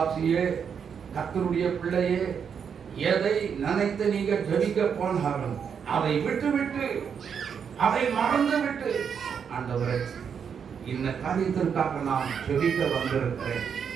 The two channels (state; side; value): quieter; left; 7.1 dB